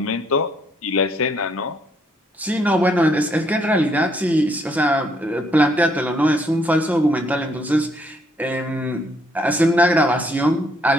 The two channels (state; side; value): normal; both; correlation 0.69